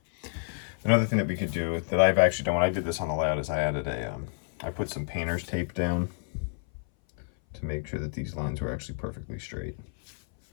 Another thing that we could do that I've actually done when I did this on the layout is I added I put some painter's tape down to make sure that these lines were actually perfectly straight.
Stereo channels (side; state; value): right; silent; 57 dB below the other